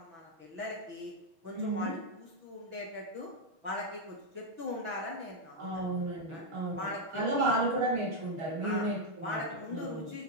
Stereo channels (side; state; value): left; late; 6.1 ms